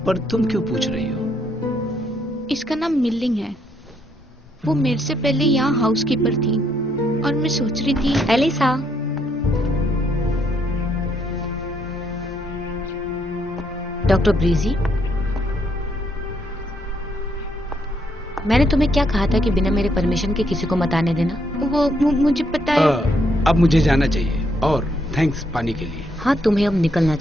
पर तुम क्यों पूछ रही हो? इसका नाम मिल्लिंग है। वो मेरे से पहले यहाँ हाउसकीपर थी और मैं सोच रही थी। एलिसा, डॉक्टर ब्रीजी, मैंने तुम्हें क्या कहा था कि बिना मेरे परमिशन के किसी को मत आने देना? वो मुझे पता है। अब मुझे जाना चाहिए, और थैंक्स पानी के लिए। हाँ, तुम्हें अब निकलना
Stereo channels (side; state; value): both; normal; correlation 0.73